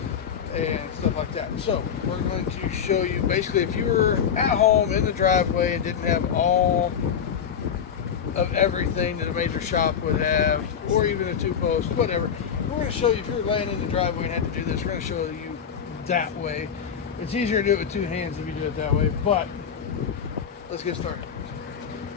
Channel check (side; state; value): right; quieter; 7.7 dB